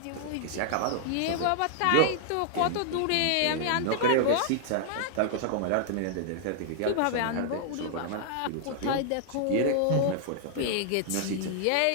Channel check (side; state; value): both; different; correlation -0.01